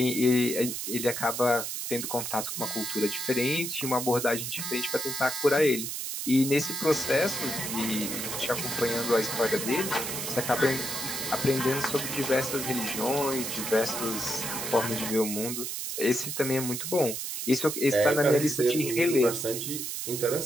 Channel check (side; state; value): right; noise; hiss, 4 dB below the sound